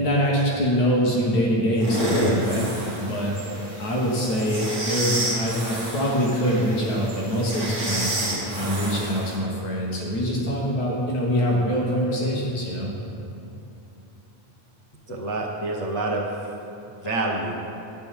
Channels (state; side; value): late; right; 8.9 ms